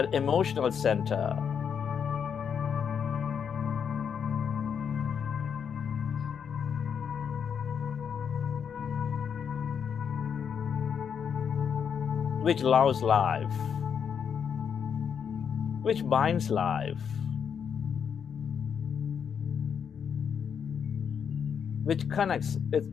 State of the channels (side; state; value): right; quieter; 7.3 dB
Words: emotional center. Which loves life, which binds life, which connects